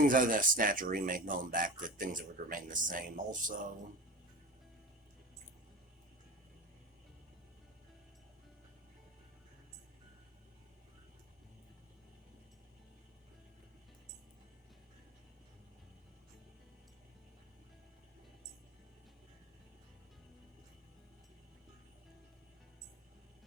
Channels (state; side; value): normal; both; correlation 0.30